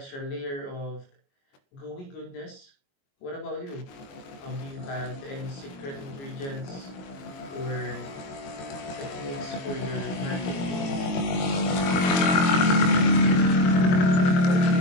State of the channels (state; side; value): late; right; 22 ms